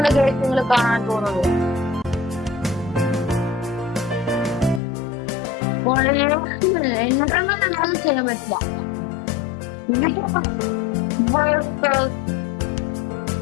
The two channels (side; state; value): right; drops out; at 4.8 s